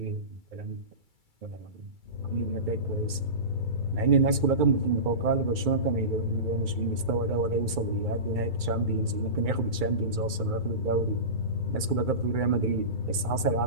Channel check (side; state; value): left; late; 2.3 ms